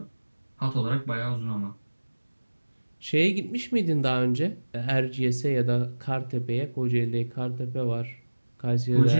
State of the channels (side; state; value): both; inverted; correlation -1.00